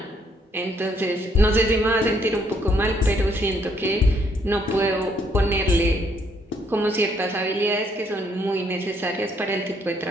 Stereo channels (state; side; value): normal; both; correlation 0.69